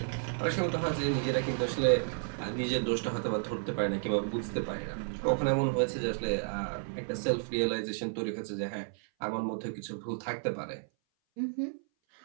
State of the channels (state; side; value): silent; left; 56 dB below the other